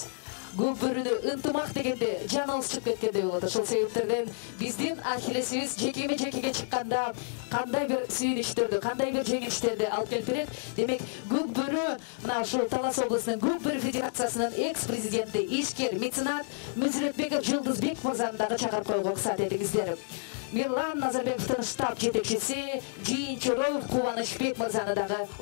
Көп бөрүнө ынтымак дегенде жаныбыз чыгып кеткендей болот. Ошол себептерден биздин Ахиллесибиз жекеме-жекеге чыкканда кандай бир сүйүнүчтөрдү, кандай бир жеңилиштерди алып келип берет. Демек, Көк бөрү мына ушул Талас облусунун Көк бөрү федерациясынын экс-президенти, ишкер, меценат Мүзүрөтбеков Жылдызбек мырзаны дагы чакырып коюуга уруксат этиңиздер. Мирлан Назарбековдун штаб жетекчиси Жийинчороев Кубанычбек мырзаны дагы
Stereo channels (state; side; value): silent; right; 58 dB below the other